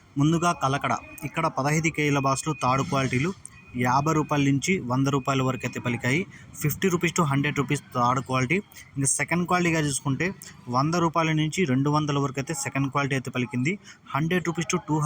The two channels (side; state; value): both; identical; correlation 1.00